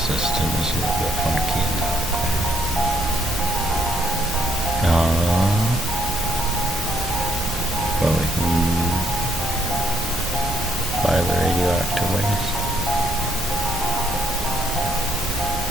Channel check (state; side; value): normal; both; correlation 0.71